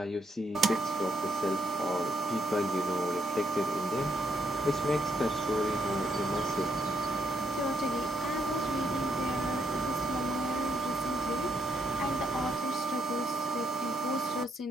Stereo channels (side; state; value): both; normal; correlation 0.76